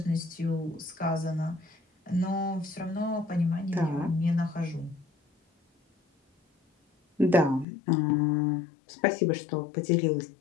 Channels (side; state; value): right; drops out; at 7.7 s